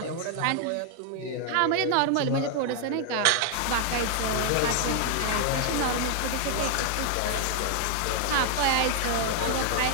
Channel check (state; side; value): different; both; correlation 0.00